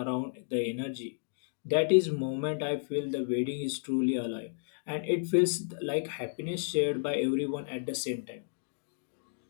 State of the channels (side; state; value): right; silent; digital silence